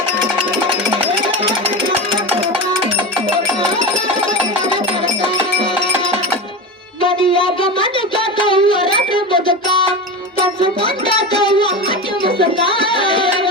ಮನೆಯಾಗ ಮನೆ ಕಾತವ್ವ ರಾತ್ರಿ ಬದುಕ ಕನಸು ಕಂಡಾತವ್ವ ಹಟ್ಟಿ ಮುಸುಕ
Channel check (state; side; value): normal; both; correlation 0.24